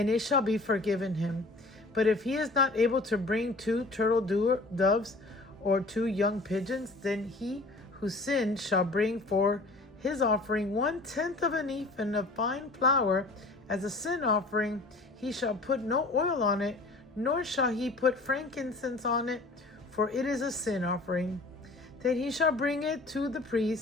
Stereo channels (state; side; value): quieter; right; 3.0 dB